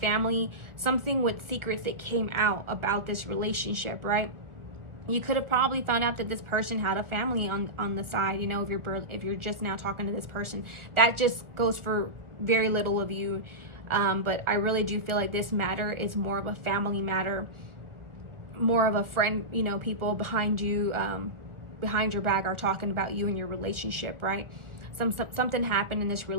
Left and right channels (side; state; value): left; late; 1.4 ms